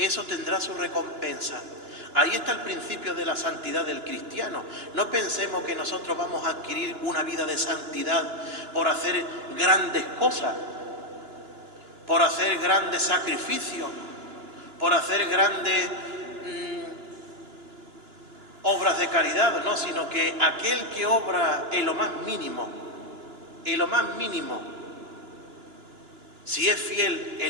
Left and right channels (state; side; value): late; left; 2.9 ms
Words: tendrá su recompensa. Ahí está el principio de la santidad del cristiano. No pensemos que nosotros vamos a adquirir una vida de santidad por hacer grandes cosas, por hacer grandes sacrificios, por hacer grandes obras de caridad, no, sino que aquel que obra en lo más mínimo, si es fiel